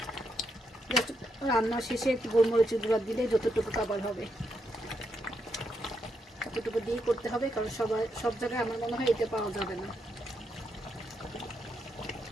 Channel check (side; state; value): both; normal; correlation 0.80